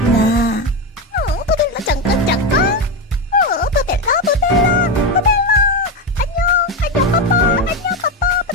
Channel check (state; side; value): normal; both; correlation 0.13